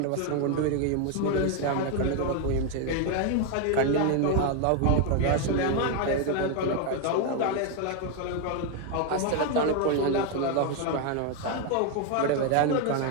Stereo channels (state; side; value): different; both; correlation 0.01